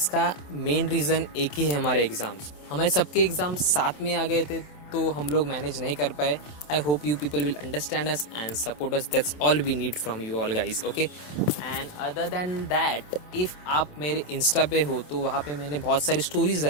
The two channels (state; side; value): late; right; 27 ms